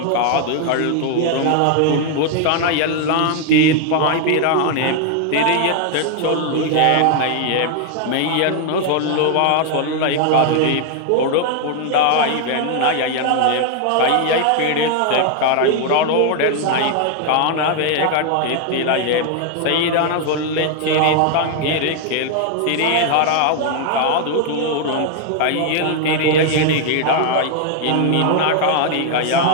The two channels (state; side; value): different; both; correlation 0.00